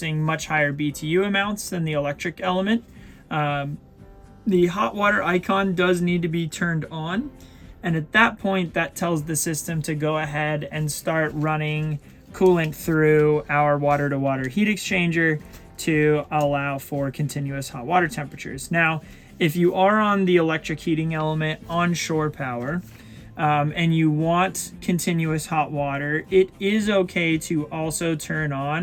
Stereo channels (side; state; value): both; identical; correlation 1.00